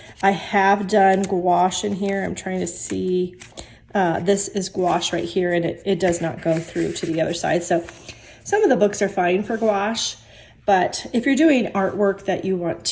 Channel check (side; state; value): both; identical; correlation 1.00